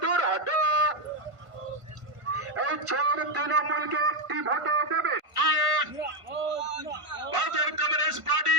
দূর হাটো। এই চোর তৃণমূলকে একটি ভোটও দেবে। ভারতের কমিউনিস্ট পার্টি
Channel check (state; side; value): late; left; 1.5 ms